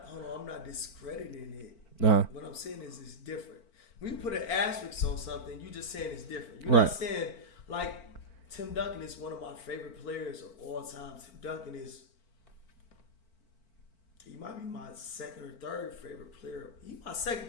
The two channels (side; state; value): right; late; 4.5 ms